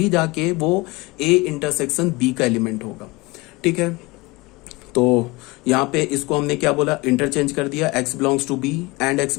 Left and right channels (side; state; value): right; quieter; 23.7 dB